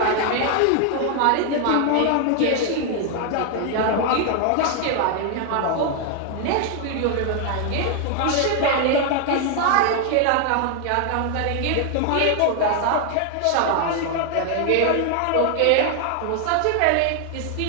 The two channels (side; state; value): both; different; correlation 0.00